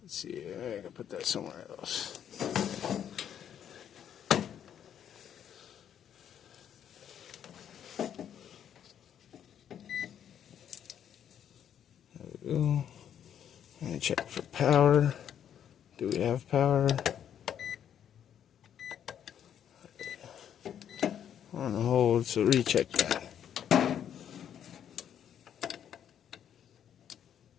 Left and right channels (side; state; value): right; quieter; 9.4 dB